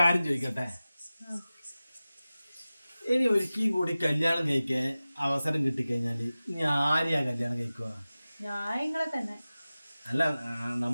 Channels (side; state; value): both; inverted; correlation -0.96